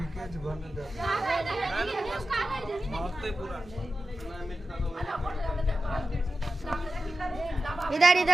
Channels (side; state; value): both; normal; correlation 0.93